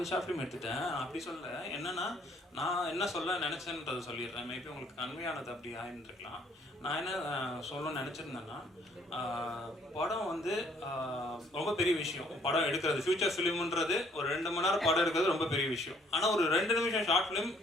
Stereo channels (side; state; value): both; normal; correlation 0.63